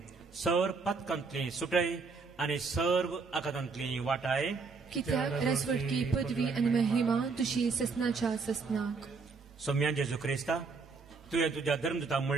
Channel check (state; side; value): quieter; left; 4.6 dB